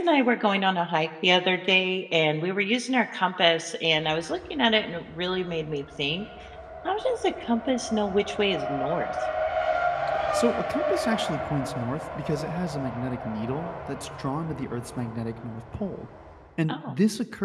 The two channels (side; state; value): both; identical; correlation 1.00